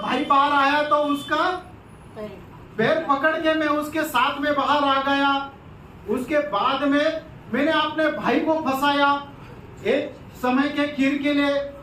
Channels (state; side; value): identical; both; correlation 1.00